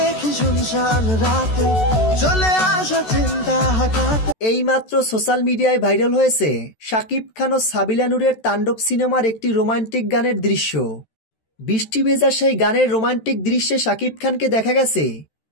শুনশান রাতে চলে আসা চিন্তা হঠাৎ। এইমাত্র সোশ্যাল মিডিয়ায় ভাইরাল হয়েছে শাকিব খান ও সাবিলা নূরের তাণ্ডব সিনেমার একটি রোমান্টিক গানের দৃশ্য। বৃষ্টি ভেজা সেই গানের রোমান্টিক দৃশ্যে শাকিব খানকে দেখা গেছে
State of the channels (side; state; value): right; late; 13 ms